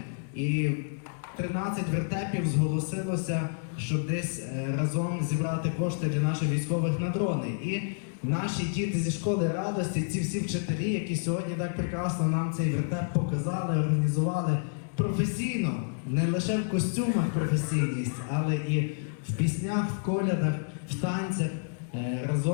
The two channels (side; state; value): right; silent; digital silence